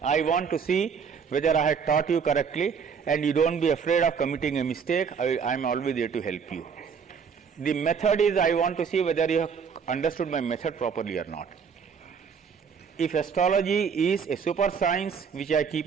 I want to see whether I had taught you correctly, and you don't be afraid of committing a mistake. I am always there to help you. The method is, I want to see whether you have understood my method properly or not. If astrology is a super science, which I keep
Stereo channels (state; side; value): quieter; left; 6.4 dB